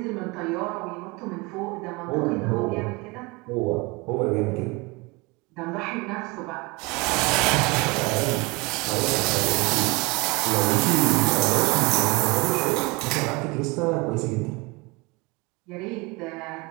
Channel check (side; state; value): left; quieter; 25.4 dB